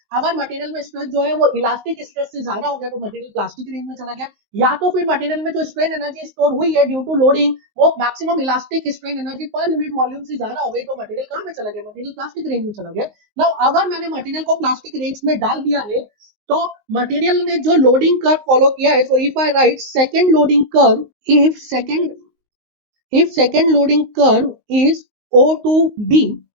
अगर मटेरियल में स्ट्रेस जो है वो इलास्टिक स्ट्रेस से ज्यादा हो गया तो मटेरियल प्लास्टिक रेंज में चला गया. या तो फिर मटेरियल में जो स्ट्रेन एनर्जी स्टोर हुई है ड्यू टू लोडिंग, वो maximum elastic strain energy per unit volume से ज्यादा हो गई तो मटेरियल कहां पे चला गया, मटेरियल प्लास्टिक रेंज में चला गया. नाउ अगर मैंने मटेरियल को प्लास्टिक रेंज में डाल दिया है तो मटेरियल ने जो लोडिंग कर्व फॉलो किया है, so if I write second loading curve, if second loading curve is O to B,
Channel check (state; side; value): late; left; 19 ms